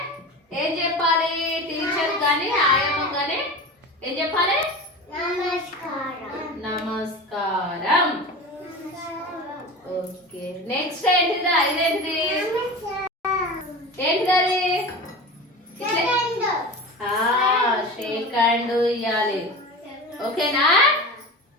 ఏం చెప్పాలి? టీచర్ కానీ ఆయమ్మ కానీ ఏం చెప్పాలి? నమస్కారం. ఓకే, నెక్స్ట్ ఏంటిదా? ఇదేంటిది? ఏంటిది? షేక్ హ్యాండ్ ఇవ్వాలి. ఓకేనా?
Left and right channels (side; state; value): both; normal; correlation 0.31